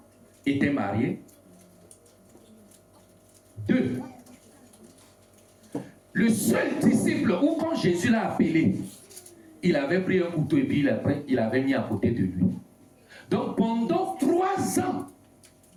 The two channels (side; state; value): both; identical; correlation 1.00